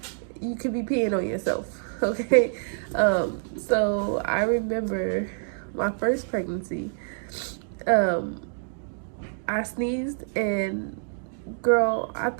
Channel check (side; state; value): left; silent; digital silence